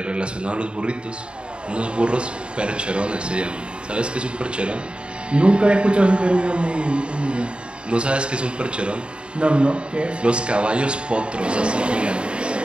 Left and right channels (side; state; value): left; late; 0.054 ms